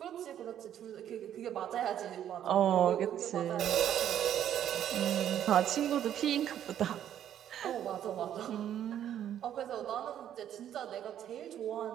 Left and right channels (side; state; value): left; quieter; 10.5 dB